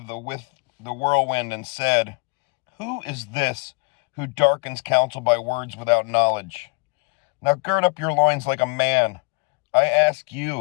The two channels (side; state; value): right; quieter; 33.0 dB